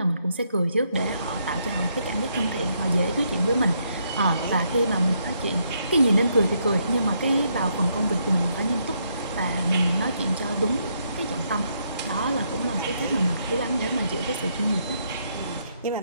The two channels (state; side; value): inverted; both; correlation -0.75